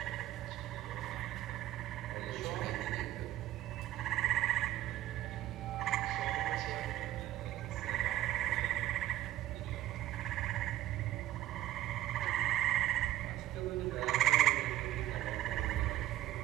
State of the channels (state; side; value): quieter; left; 13.7 dB